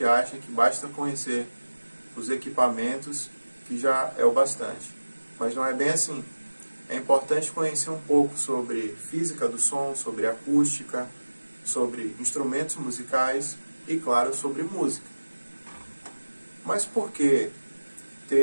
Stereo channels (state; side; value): inverted; both; correlation -1.00